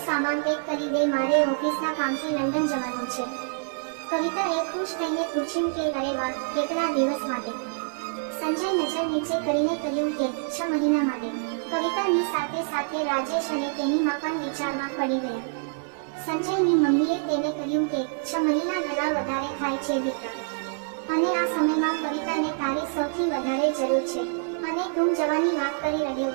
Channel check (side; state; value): left; silent; digital silence